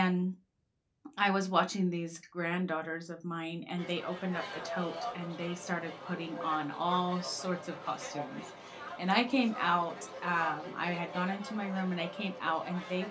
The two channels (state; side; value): identical; both; correlation 1.00